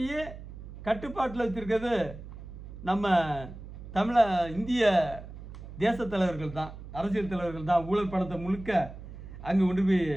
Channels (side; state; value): right; noise; hum, 13 dB below the sound